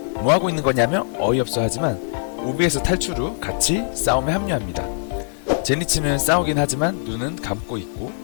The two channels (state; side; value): silent; right; 63 dB below the other